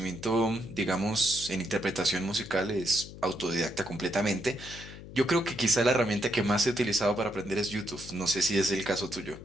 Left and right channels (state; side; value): noise; left; hum, 14 dB below the sound